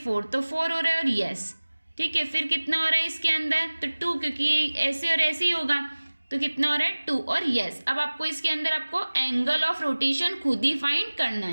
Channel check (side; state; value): both; inverted; correlation -1.00